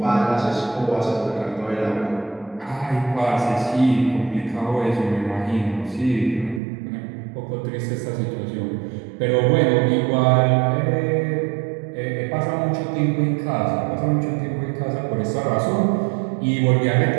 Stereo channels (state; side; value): drops out; left; at 6.6 s